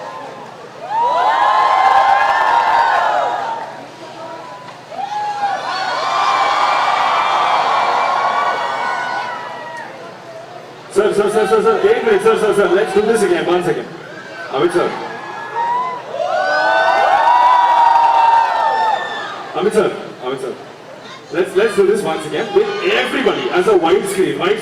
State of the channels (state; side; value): identical; both; correlation 1.00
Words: Sir, wait a minute, sir, let's do this again, 1 second. Amit sir. Amit sir. let's do this once again with everybody as a wide